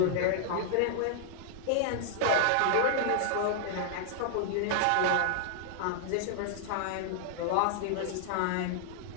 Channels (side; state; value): both; different; correlation -0.01